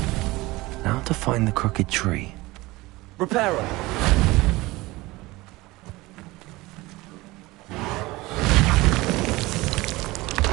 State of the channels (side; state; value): left; quieter; 20.6 dB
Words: Now to find the crooked tree. Reparo.